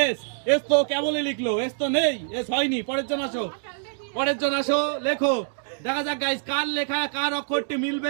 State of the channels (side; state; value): left; silent; digital silence